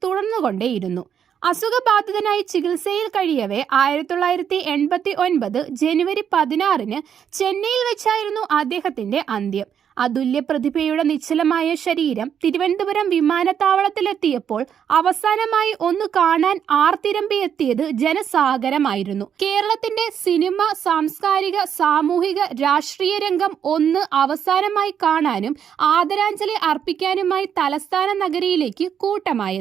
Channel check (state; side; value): quieter; left; 8.4 dB